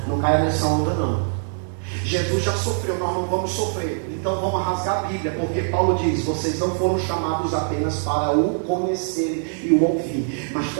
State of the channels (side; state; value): left; silent; digital silence